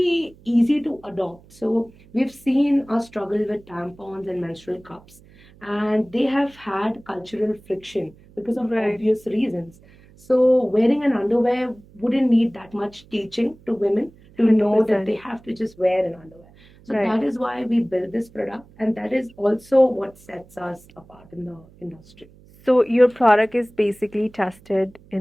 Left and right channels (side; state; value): right; noise; hum, 25 dB below the sound